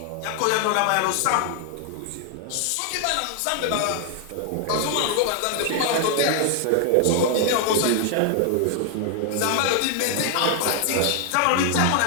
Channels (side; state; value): both; different; correlation 0.00